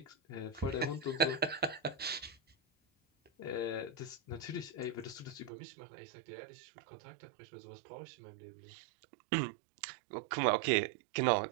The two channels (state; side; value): drops out; left; at 5.5 s